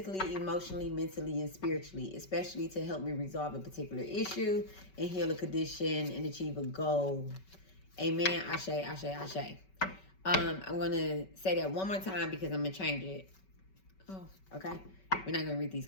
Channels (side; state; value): right; late; 5.3 ms